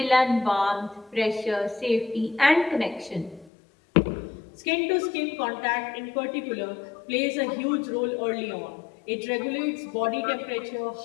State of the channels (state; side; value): drops out; right; at 3.5 s